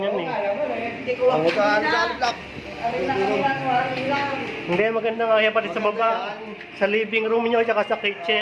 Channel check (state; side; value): identical; both; correlation 1.00